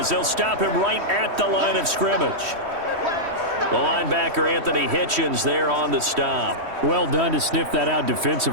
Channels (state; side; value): late; left; 3.1 ms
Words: they'll stop him right at the line of scrimmage. The linebacker Anthony Hitchens there on the stop. Well done to sniff that out